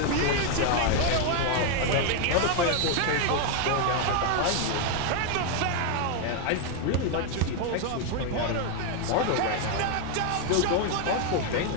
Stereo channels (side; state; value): both; different; correlation 0.01